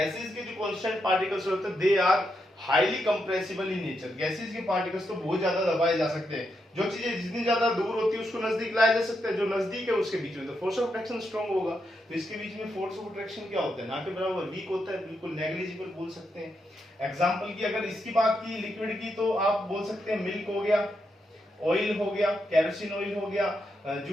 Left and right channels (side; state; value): both; normal; correlation 0.83